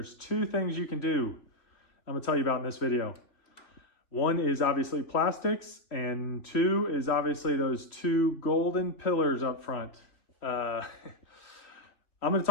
two things you can do I'm going to tell you about in this video. One is obviously plastics, and two is obviously those two golden pillars up front. I'm going to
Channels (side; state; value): right; late; 3.1 ms